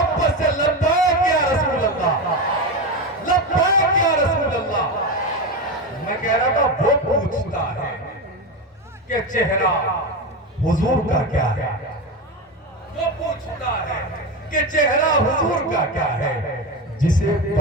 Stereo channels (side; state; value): both; normal; correlation 0.18